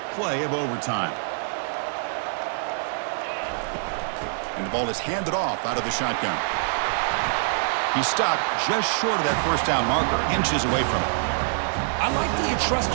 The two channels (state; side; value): silent; left; digital silence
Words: play of overtime. And the ball is handed off out of the shotgun. He stopped just short of that first down marker, inches away from it. I like that you trust